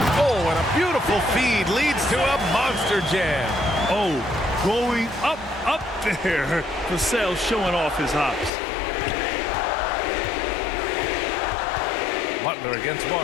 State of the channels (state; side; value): drops out; right; at 8.5 s